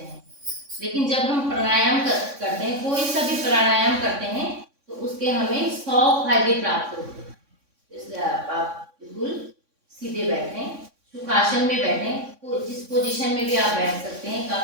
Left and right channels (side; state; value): left; late; 3.6 ms